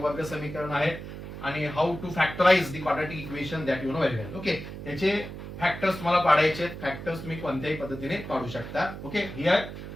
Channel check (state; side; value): noise; right; hum, 10 dB below the sound